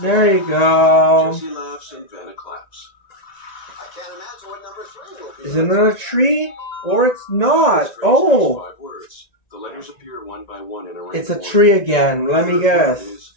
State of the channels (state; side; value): late; right; 1.9 ms